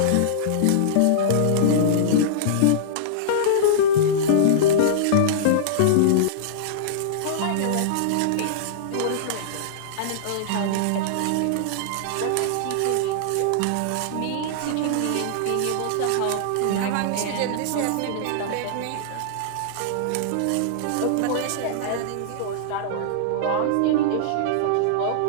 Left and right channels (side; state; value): both; different; correlation -0.02